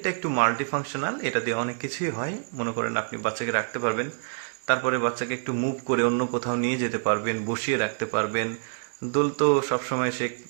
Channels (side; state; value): left; silent; digital silence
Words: একটু মাল্টি ফাংশনাল, এটা দিয়ে অনেক কিছুই হয়। মনে করেন আপনি বাচ্চাকে রাখতে পারবেন, তারপরে বাচ্চাকে একটু মুভ করে অন্য কোথাও নিয়ে যেতে পারবেন, বসিয়ে রাখতে পারবেন। দোল তো সবসময় সে